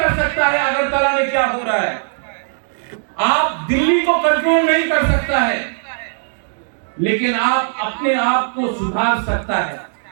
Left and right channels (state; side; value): silent; left; digital silence